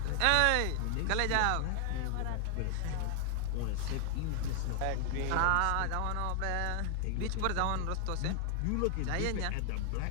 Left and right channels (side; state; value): both; different; correlation 0.00